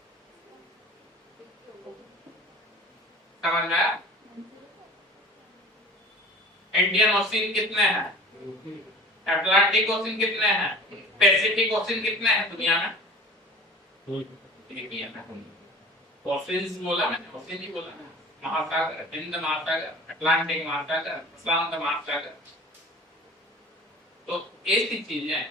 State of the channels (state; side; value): normal; both; correlation 0.41